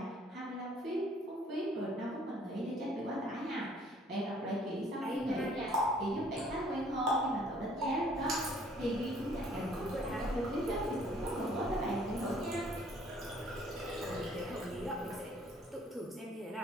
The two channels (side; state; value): both; normal; correlation 0.59